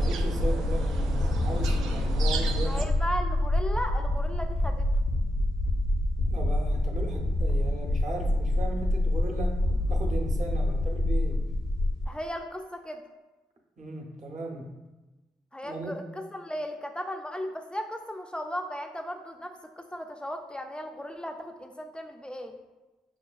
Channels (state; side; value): normal; both; correlation 0.88